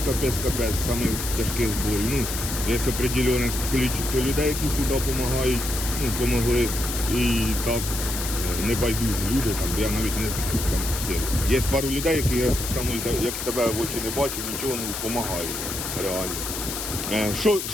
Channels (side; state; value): left; noise; hiss, 5 dB below the sound